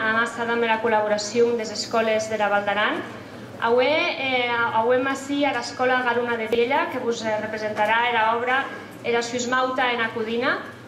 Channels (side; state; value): both; identical; correlation 1.00